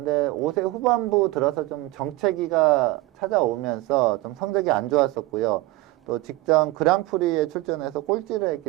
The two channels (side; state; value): left; quieter; 19.3 dB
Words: 5세 후반부 들어서 좀 정체기가 찾아오면서 좀 성적이 안 좋았었고요. 또 직전 그랑프리에 출전해서 꼴찌를